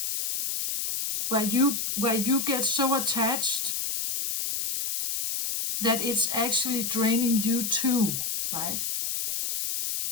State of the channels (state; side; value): noise; left; hiss, 2 dB below the sound